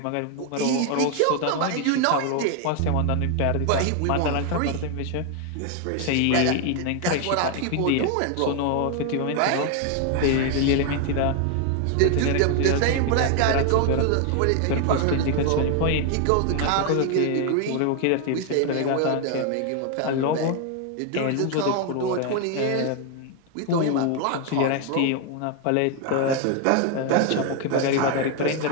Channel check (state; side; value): different; both; correlation 0.00